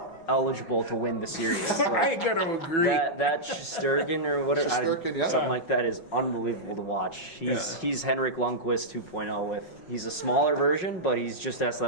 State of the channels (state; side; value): late; right; 5.5 ms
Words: eligible to win the series. I Like, got to agree. that Shesterkin or whatever, Shesterkin, yeah. something like that is unbelievable to watch. He's Henrik Lundqvist 2.0 he's a smaller version, but he's just as